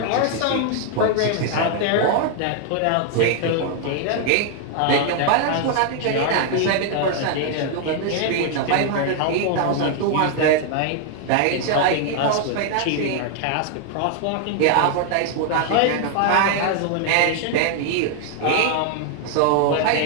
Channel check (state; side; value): different; both; correlation 0.00